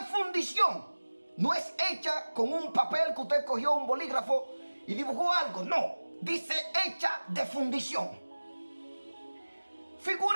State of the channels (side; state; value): both; inverted; correlation -1.00